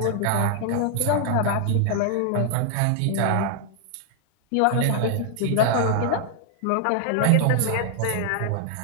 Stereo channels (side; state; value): both; different; correlation 0.00